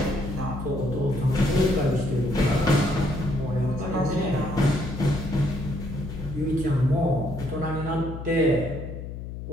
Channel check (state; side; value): noise; left; hum, 9 dB below the sound